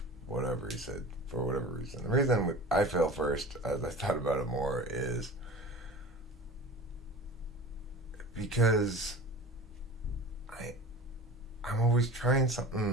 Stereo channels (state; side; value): normal; both; correlation 0.36